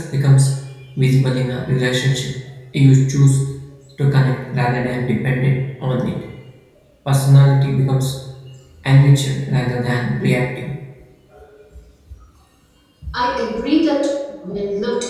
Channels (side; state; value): both; identical; correlation 1.00